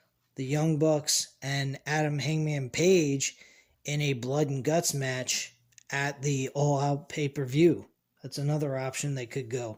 the Young Bucks, and Adam Hangman Page in a blood and guts match at the All Out pay-per-view. That's another option they could go.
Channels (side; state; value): both; identical; correlation 1.00